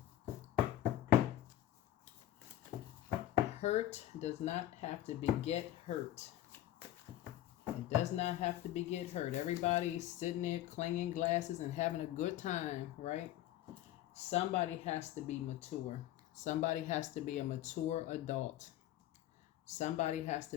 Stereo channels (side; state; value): right; quieter; 13.4 dB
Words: hurt does not have to beget hurt. It does not have to beget hurt. Everybody's sitting there clanging glasses and having a good time, right? Somebody has to be mature. Somebody has to be a mature adult. Somebody has to